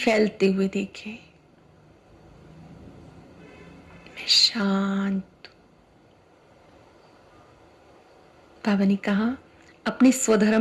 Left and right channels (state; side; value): identical; both; correlation 1.00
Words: हुए देखें। मैं शांत। बाबा ने कहा अपने